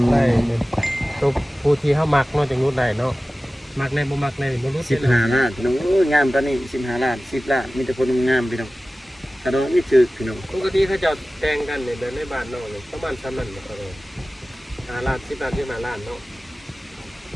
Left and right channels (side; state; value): both; normal; correlation 0.97